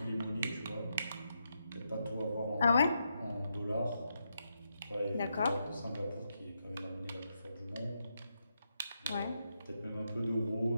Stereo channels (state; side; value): inverted; both; correlation -0.83